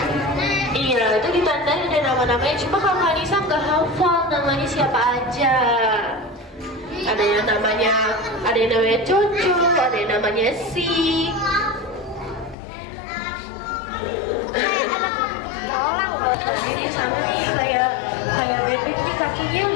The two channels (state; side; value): drops out; right; at 12.6 s